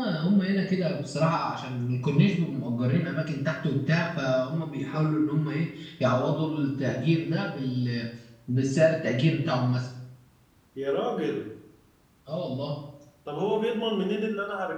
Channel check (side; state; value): both; identical; correlation 1.00